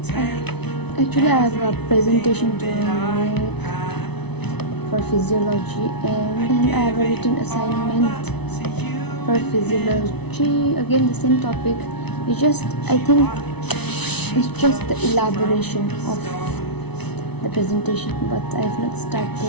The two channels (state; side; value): late; right; 0.99 ms